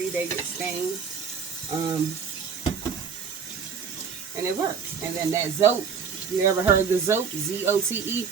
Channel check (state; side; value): quieter; left; 6.3 dB